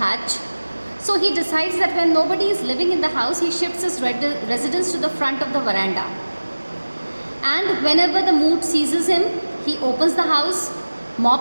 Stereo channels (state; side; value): inverted; both; correlation -1.00